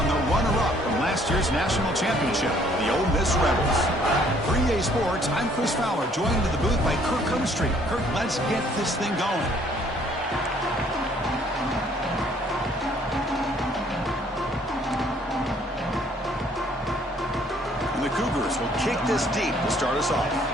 the runner-up from last year's national championship, the Ole Miss Rebels. For EA Sports, I'm Chris Fowler, joined in the booth by Kirk Cumstreet. Kirk, let's get this thing going. And the Cougars will kick this deep to start us off.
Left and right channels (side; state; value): both; normal; correlation 0.62